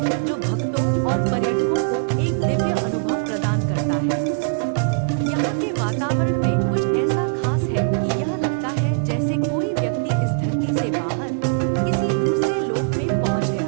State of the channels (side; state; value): left; quieter; 39.2 dB